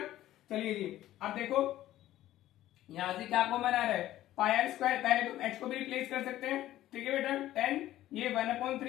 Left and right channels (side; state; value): right; quieter; 14.1 dB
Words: चलिए जी अब देखो यहां से क्या कॉमन आ रहा है, पाई आर स्क्वायर, पहले तुम एच को भी रिप्लेस कर सकते हैं। ठीक है बेटा, 10 ये